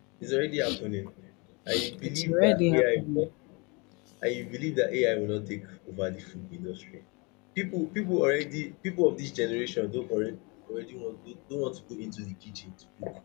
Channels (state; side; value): quieter; right; 29.7 dB